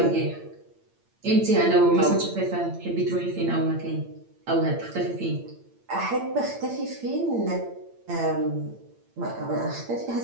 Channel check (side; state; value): left; late; 8.8 ms